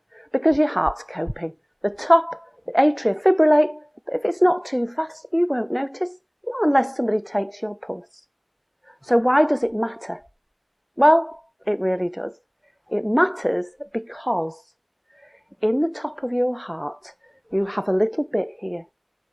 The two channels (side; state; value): both; identical; correlation 1.00